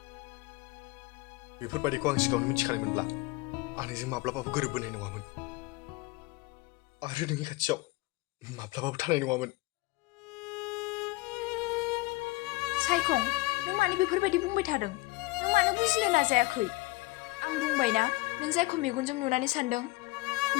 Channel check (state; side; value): quieter; right; 22.4 dB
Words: बेफोरबायदिखौ आं सिगाङावनो मिथिखानायमोनब्ला आं नोंजों माब्लाबाबो गोरोबबोनाय नङामोन आरो नोंनि खाथियाव माब्लाबाबो थानाय नङामोन। सायखं नों मानो बेफोरबायदि बुंबाय थादों नों मानो बुजिनो नाजायाखै आं बुंबायना नों जायखौ मेगनजों नुनानै सानदों